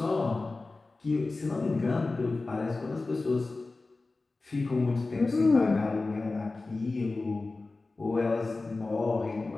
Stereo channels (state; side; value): quieter; right; 3.5 dB